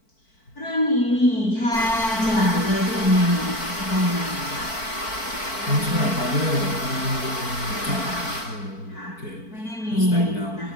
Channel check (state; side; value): late; right; 4.5 ms